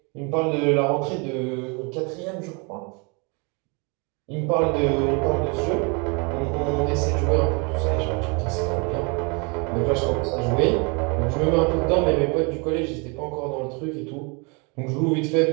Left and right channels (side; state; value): left; quieter; 31.8 dB